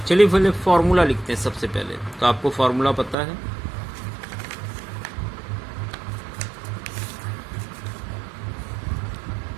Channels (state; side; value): drops out; left; at 3.2 s